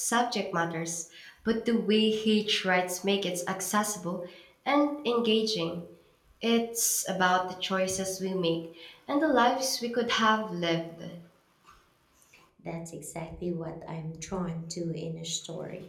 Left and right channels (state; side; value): identical; both; correlation 1.00